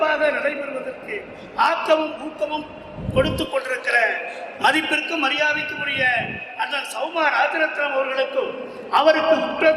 நடைபெறுவதற்கு ஆக்கமும் ஊக்கமும் கொடுத்து கொண்டிருக்கிற மதிப்பிற்கும் மரியாதைக்கும் உரிய அண்ணன் சௌமா ராஜரத்னம் அவர்களுக்கும் அவருக்கு உற்ற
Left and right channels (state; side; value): identical; both; correlation 1.00